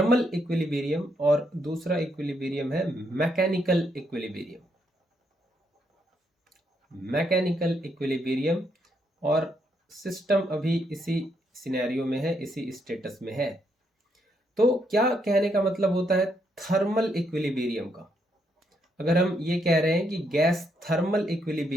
इक्विलिब्रियम और दूसरा इक्विलिब्रियम है मैकेनिकल इक्विलिब्रियम। Mechanical equilibrium. और सिस्टम अभी इसी सिनेरियो में है, इसी स्टेटस में है। तो क्या कहने का मतलब होता है थर्मल इक्विलिब्रियम का? अगर हम ये कह रहे हैं कि गैस थर्मल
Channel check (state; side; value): normal; both; correlation 0.76